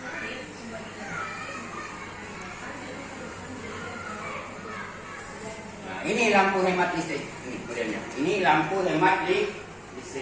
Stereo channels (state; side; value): identical; both; correlation 1.00